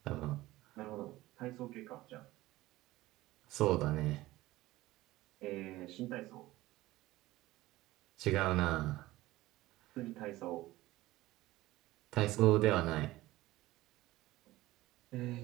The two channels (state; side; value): quieter; left; 17.6 dB